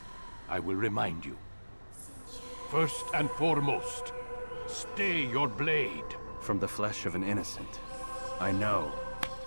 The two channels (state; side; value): inverted; both; correlation -1.00